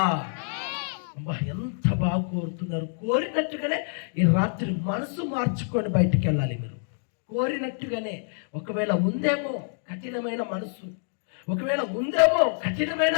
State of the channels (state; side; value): silent; right; digital silence